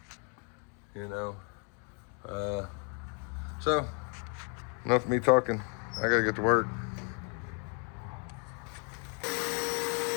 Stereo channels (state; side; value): quieter; right; 38.8 dB